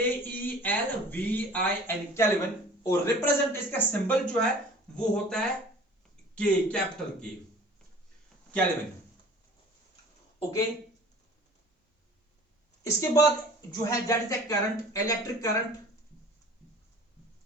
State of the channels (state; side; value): normal; both; correlation 0.46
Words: केल्विन। और रिप्रेजेंट इसका सिंबल जो है वो होता है K, capital K, kelvin. Okay, इसके बाद जो है that is the current, electric current.